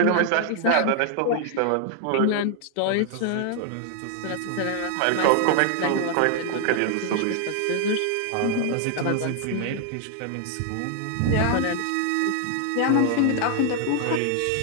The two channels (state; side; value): different; both; correlation 0.00